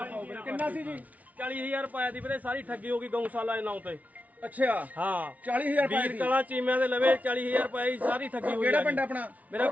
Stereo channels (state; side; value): late; left; 0.071 ms